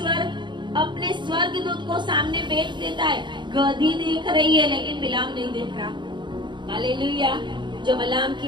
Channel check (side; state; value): left; late; 0.22 ms